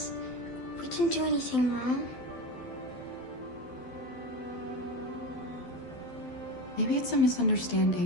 We didn't do anything wrong. Maybe it's a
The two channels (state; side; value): late; right; 12 ms